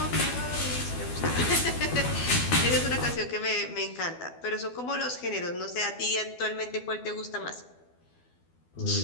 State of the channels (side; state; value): right; late; 12 ms